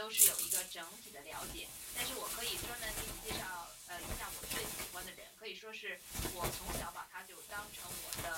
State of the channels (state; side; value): identical; both; correlation 1.00